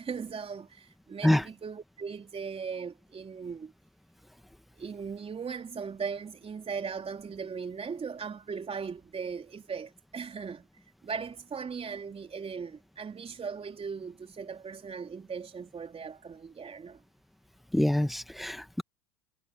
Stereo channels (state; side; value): normal; both; correlation 0.79